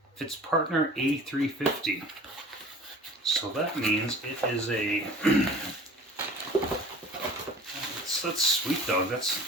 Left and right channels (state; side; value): normal; both; correlation 0.44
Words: A350. So that means it is a... that's sweet, dog. That's